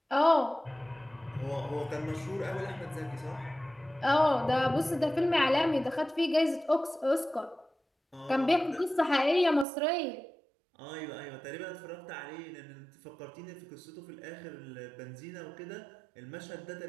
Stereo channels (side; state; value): left; drops out; at 9.7 s